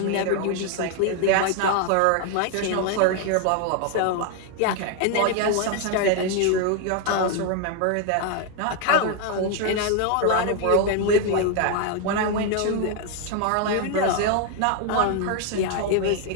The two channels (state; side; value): different; both; correlation 0.01